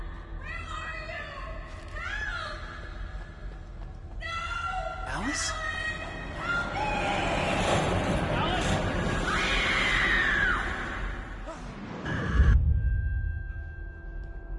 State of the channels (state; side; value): identical; both; correlation 1.00